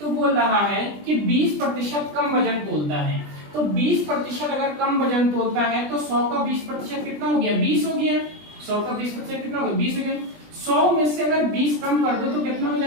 बोल रहा है कि 20% कम वजन तोलता है। तो 20% अगर कम वजन तोलता है तो 100 का 20% कितना हो गया? 20 हो गया। 100 का 20% कितना होगा? 20 हो गया। 100 में से अगर 20 कम कर दो तो कितना हो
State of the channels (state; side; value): late; left; 20 ms